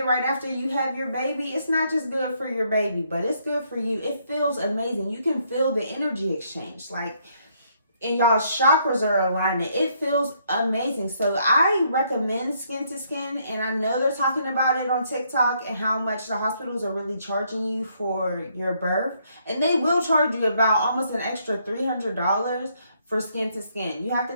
right after you have your baby, it's not just good for your baby, but it's good for you. It feels amazing. You can feel the energy exchange. Like, and y'all's chakras are aligning. It feels amazing. So I recommend skin to skin, and I know they're talking about it on TikTok and how much the hospitals are really charging you for your birth. And they will charge you about almost an extra $300 for skin to skin. You have to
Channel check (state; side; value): inverted; both; correlation -0.71